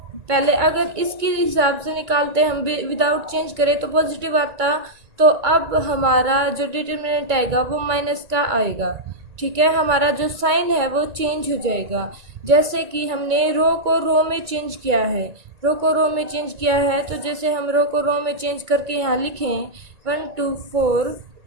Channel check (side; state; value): left; late; 1.9 ms